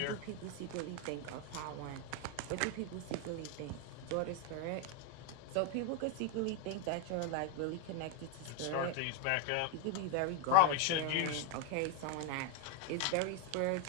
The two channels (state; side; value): different; both; correlation 0.01